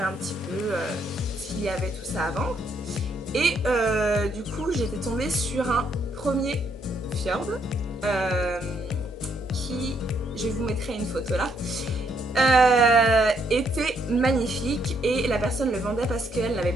un petit peu s'il y avait tout ça avant et du coup j'étais tombée sur un premier fjord qui, je vous mettrai une photo là, était magnifique et la personne le vendait parce qu'elle n'avait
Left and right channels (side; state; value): both; normal; correlation 0.73